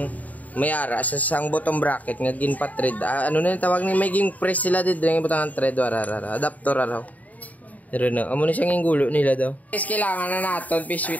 mayara sa sang bottom bracket nga gin pa thread. Ano na yung tawag ni may ging press sila dito ng butang thread warara adapter araw. Pero na amo na siyang gulo nila daw. Guys kailangan na naton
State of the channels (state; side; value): late; right; 0.074 ms